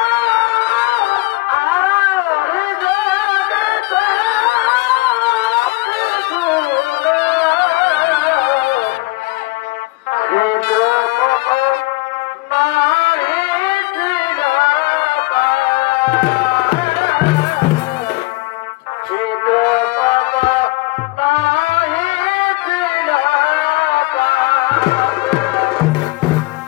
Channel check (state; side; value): quieter; right; 22.1 dB